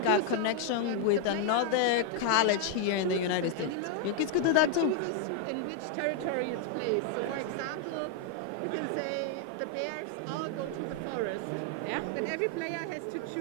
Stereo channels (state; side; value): different; both; correlation 0.00